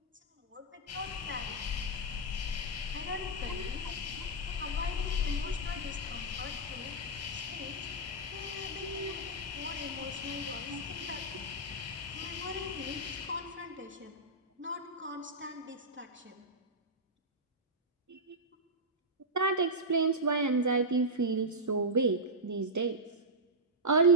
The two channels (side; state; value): both; normal; correlation -0.08